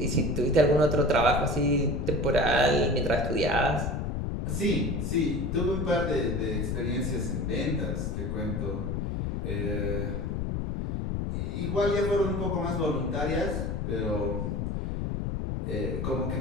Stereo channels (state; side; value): noise; left; rumble, 1 dB below the sound